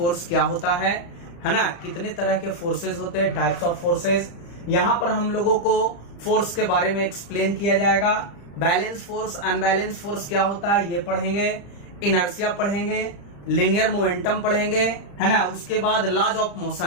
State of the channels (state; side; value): late; right; 35 ms